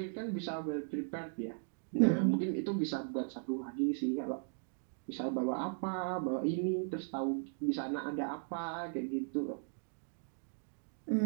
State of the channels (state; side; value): silent; left; digital silence